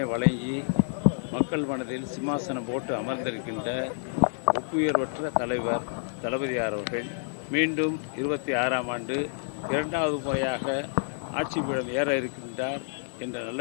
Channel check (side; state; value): right; silent; digital silence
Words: வழங்கி மக்கள் மனதில் சிம்மாசனம் போட்டு அமர்ந்திருக்கின்ற ஒப்புயர்வற்ற தலைவர் தளபதியார் அவர்கள் மீண்டும் 26ஆம் ஆண்டு 2வது முறையாக ஆட்சி பீடம் ஏற இருக்கின்றார் என்ற நல்ல